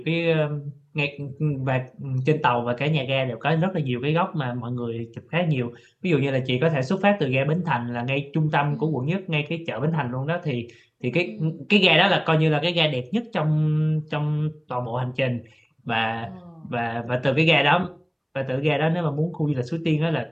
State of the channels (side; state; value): both; identical; correlation 1.00